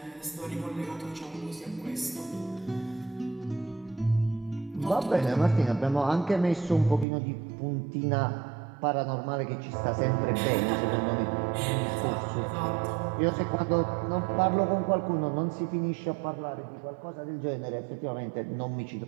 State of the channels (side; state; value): left; drops out; at 7.1 s